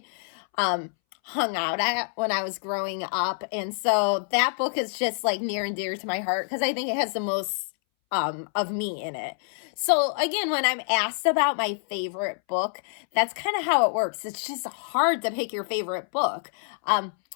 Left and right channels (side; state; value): right; silent; 60 dB below the other